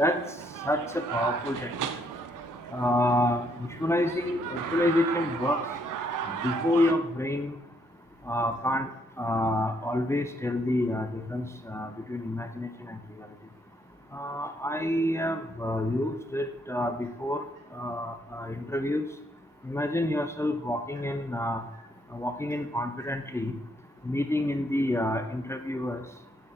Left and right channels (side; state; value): both; normal; correlation 0.71